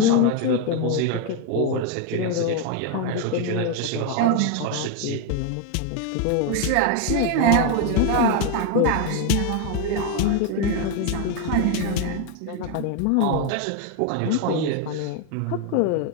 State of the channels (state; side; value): different; both; correlation 0.01